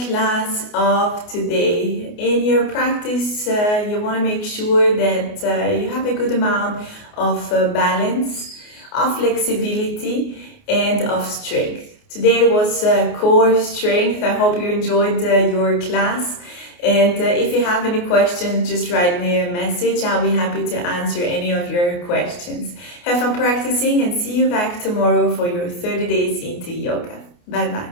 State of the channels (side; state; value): right; late; 28 ms